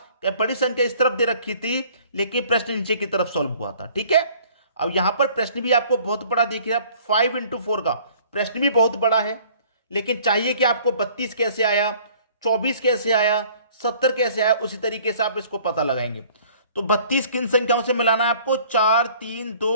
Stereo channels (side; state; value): both; inverted; correlation -0.54